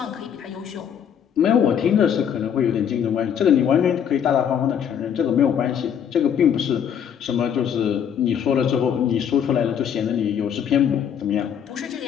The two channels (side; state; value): right; quieter; 8.4 dB